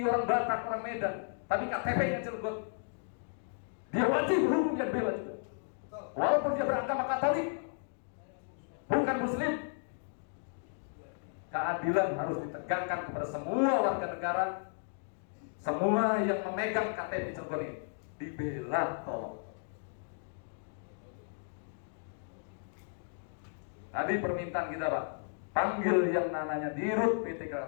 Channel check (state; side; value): silent; right; digital silence